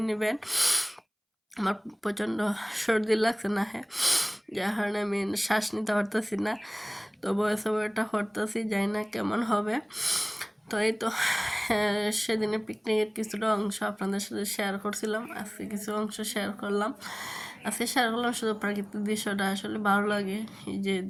নেবেন। আমার প্রচণ্ড সর্দি লাগছে না, হ্যাঁ, যার কারণে আমি শ্বাস নিতে পারতেছি না। তো ভয়েস ওভারটা করতেছি, জানি না কেমন হবে। তো এই তো সেদিনে পিকনিকের কিছুটা অংশ আপনাদের সাথে শেয়ার করছিলাম, আজকে কিছু অংশ শেয়ার করলাম। আজকে শেয়ার করলাম শুধু প্রাকৃতিক দৃশ্যটা, আসলে ভালো লাগে এই যে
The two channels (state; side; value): identical; both; correlation 1.00